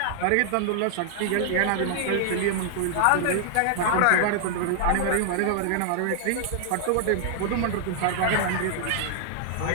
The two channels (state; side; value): different; both; correlation -0.01